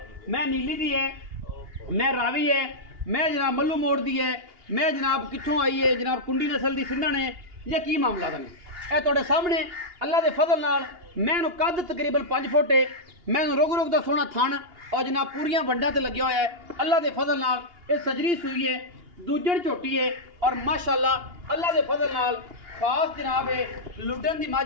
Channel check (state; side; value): late; left; 2.8 ms